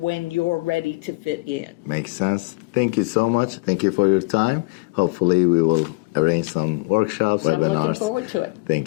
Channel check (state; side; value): quieter; right; 27.3 dB